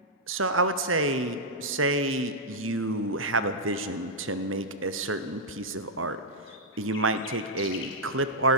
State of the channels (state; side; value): normal; both; correlation -0.07